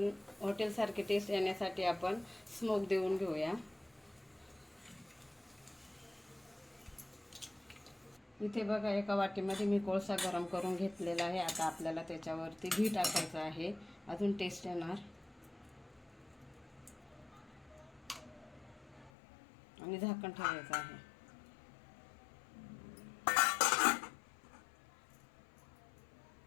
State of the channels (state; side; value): drops out; right; at 19.1 s